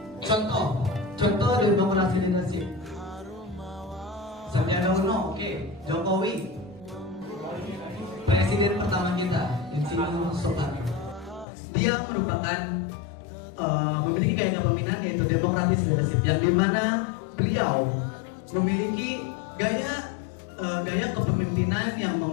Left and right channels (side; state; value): right; drops out; at 11.5 s